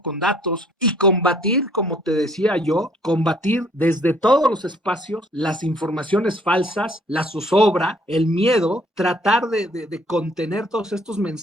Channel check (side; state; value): both; normal; correlation 0.61